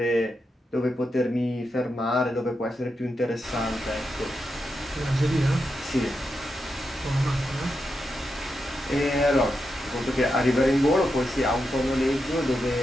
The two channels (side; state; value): both; normal; correlation 0.86